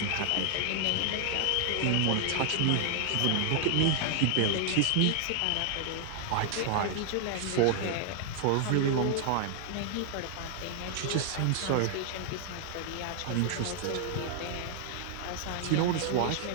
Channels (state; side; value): different; both; correlation 0.00